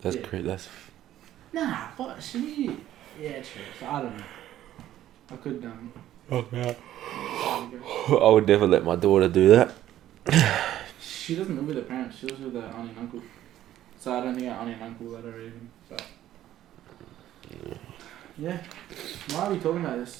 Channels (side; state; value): left; quieter; 12.8 dB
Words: That's Yeah. crazy. That's Nah, what? She. Yeah, true. So I don't know. I could, fuck yeah. there we I would never let my daughter do that. go. She doesn't live with her parents. She lives with her auntie and uncle. So I don't think her auntie and uncle let her even. But. Yeah. Why are we talking about this?